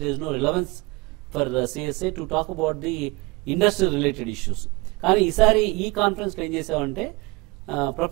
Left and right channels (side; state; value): left; quieter; 24.9 dB